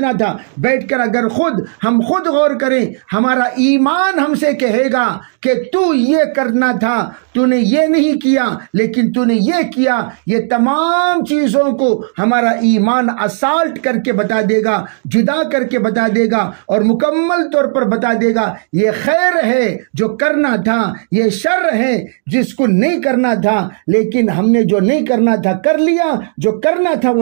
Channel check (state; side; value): silent; left; digital silence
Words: تھا۔ بیٹھ کر اگر ہم خود غور کریں، ہمارا ایمان ہم سے کہے گا کہ تو یہ کرنا تھا، تو نے یہ نہیں کیا، لیکن تو نے یہ کیا۔ یہ تمام چیزوں کو ہمارا ایمان اسالٹ کر کے بتا دے گا، جدا کر کے بتا دے گا، اور مکمل طور پر بتا دے گا یہ خیر ہے جو کرنا تھا، یہ شر ہے جس کو نہیں کرنا تھا، لیکن ہم نے جو نہیں کرنا تھا کر لیا، جو کرنا تھا